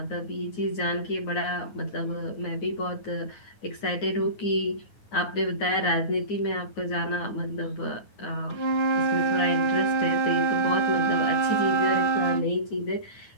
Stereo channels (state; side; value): late; right; 9.6 ms